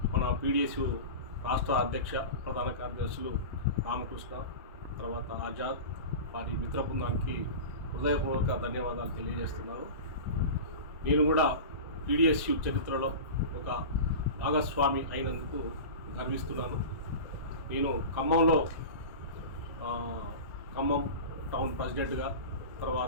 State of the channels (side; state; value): both; inverted; correlation -0.30